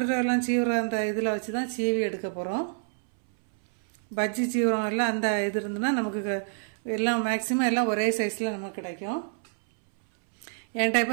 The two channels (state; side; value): silent; left; 60 dB below the other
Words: சீவுற அந்த இதில் வச்சு தான் சீவி எடுக்க போகிறோம். பஜ்ஜி சீவுறோம் எல்லாம் அந்த இது இருந்துன்னா நமக்கு எல்லாம் மேக்சிமம் எல்லாம் ஒரே சைஸில் நமக்கு கிடைக்கும். என்கிட்ட